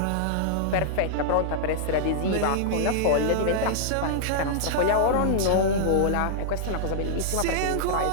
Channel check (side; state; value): both; different; correlation -0.02